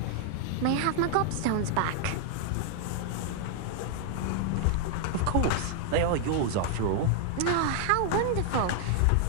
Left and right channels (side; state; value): both; different; correlation 0.00